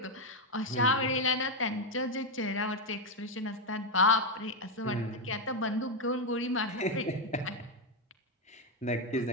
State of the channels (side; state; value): both; normal; correlation 0.04